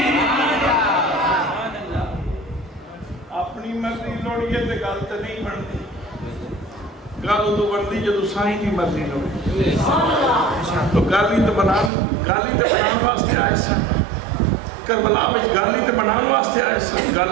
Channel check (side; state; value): left; drops out; at 11.9 s